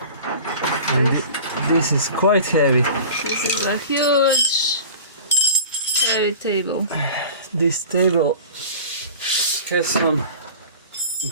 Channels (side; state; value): both; inverted; correlation -0.39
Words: this is quite heavy. This is a huge heavy table. This table has some